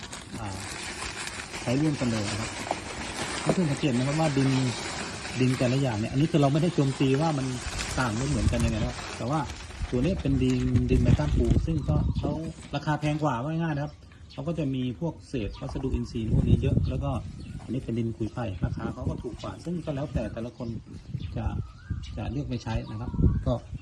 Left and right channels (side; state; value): both; identical; correlation 1.00